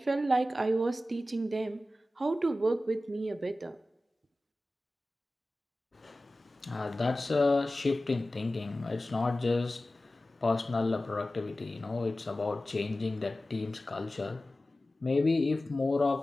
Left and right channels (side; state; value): both; normal; correlation 0.95